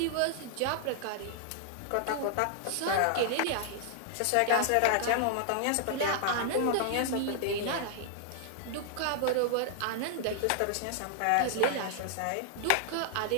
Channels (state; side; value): different; both; correlation -0.01